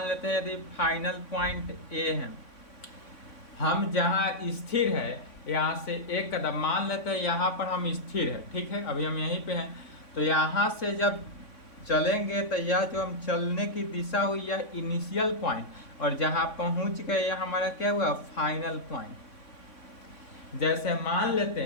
लेते हैं यदि फाइनल पॉइंट ए है। हम जहाँ स्थिर है यहाँ से एक कदम मान लेते हैं, यहाँ पर हम स्थिर है, ठीक है, अभी हम यहीं पे हैं। तो यहाँ से जब चलेंगे तो यह जो हम चलने की दिशा हुई यह इनिशियल पॉइंट, और जहाँ पहुँच गए यह हमारा क्या हुआ? Final point. जैसे मान लेते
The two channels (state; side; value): late; right; 3.6 ms